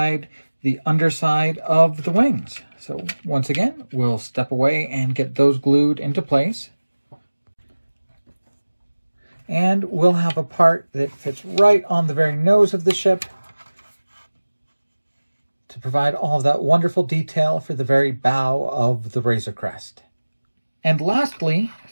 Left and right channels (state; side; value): inverted; both; correlation -1.00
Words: the underside of the wings. So once again, we'll step away and get those glued into place. And we'll have a part that fits right on the very nose of the ship to provide all of that wonderful detail for the very bow of the Razor Crest. And lastly,